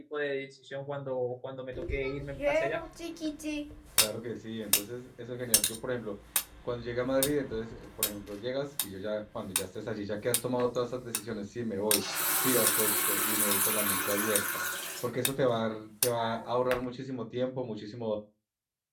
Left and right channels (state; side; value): identical; both; correlation 1.00